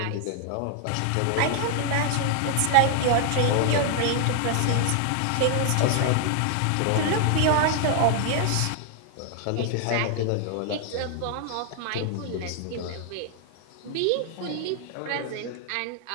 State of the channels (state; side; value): different; both; correlation 0.00